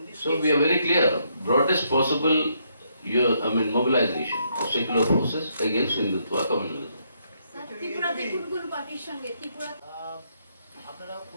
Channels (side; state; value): both; inverted; correlation -0.74